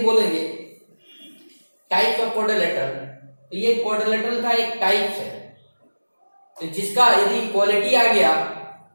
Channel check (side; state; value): both; inverted; correlation -1.00